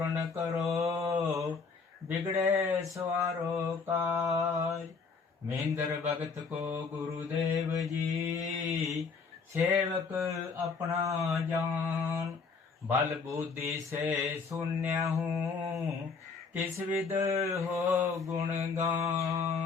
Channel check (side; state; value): right; quieter; 4.9 dB